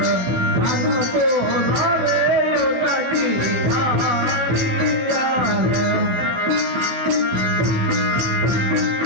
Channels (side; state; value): left; late; 16 ms